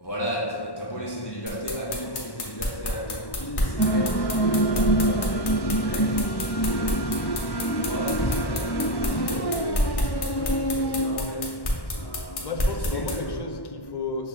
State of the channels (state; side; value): late; right; 1.1 ms